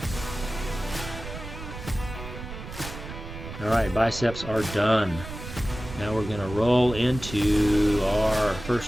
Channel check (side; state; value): right; noise; rumble, 11 dB below the sound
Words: All right, biceps are done. Now we're going to roll into our